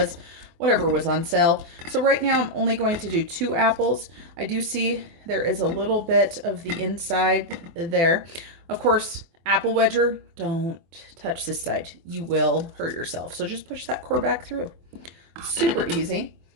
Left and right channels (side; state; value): left; late; 24 ms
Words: whatever was on sale. So right now I'm only going to do 2 apples. I do see there is a little bit of the inside there. Of course, apple wedger, don't touch this side. You will hurt yourself. So just push that core back through. Super easy.